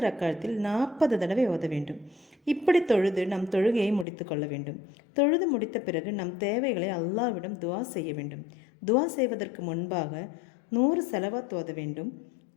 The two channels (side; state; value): right; drops out; at 4.0 s